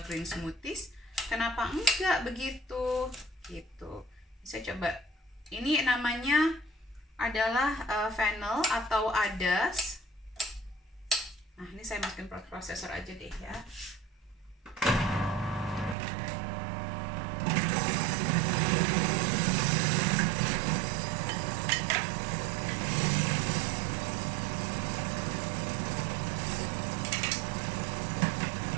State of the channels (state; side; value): drops out; left; at 16.0 s